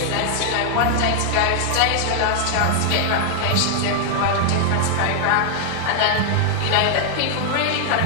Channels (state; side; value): different; both; correlation 0.00